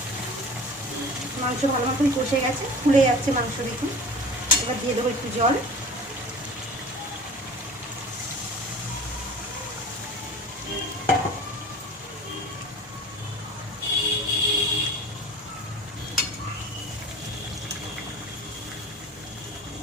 মাংস ভালো মতন কষে গেছে, ফুলে যাচ্ছে মাংস দেখুন। এবার দিয়ে দেবো একটু জল।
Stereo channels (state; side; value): normal; both; correlation 0.39